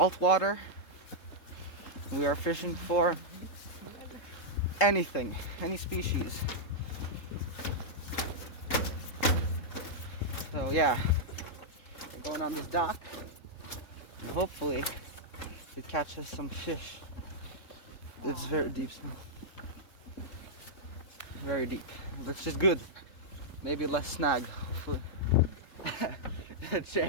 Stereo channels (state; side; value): late; right; 3.7 ms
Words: We are fishing for anything, any species. So yeah, we're going on this dock, and hopefully it catches some fish. It's very deep now. Very deep, which is good. Maybe less snag, hopefully.